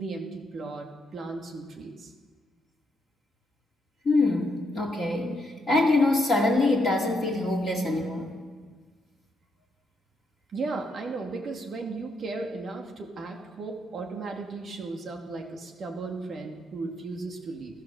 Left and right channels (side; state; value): both; normal; correlation 0.78